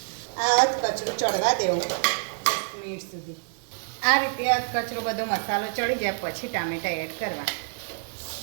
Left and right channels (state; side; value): silent; left; 60 dB below the other